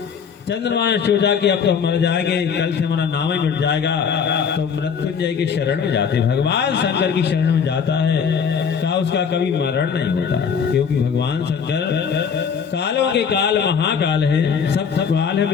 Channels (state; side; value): quieter; right; 6.7 dB